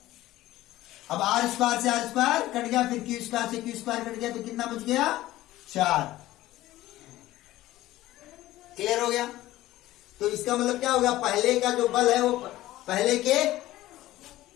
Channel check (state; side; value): quieter; right; 16.0 dB